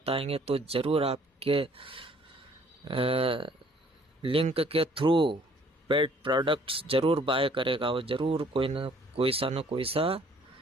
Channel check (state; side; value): normal; both; correlation 0.59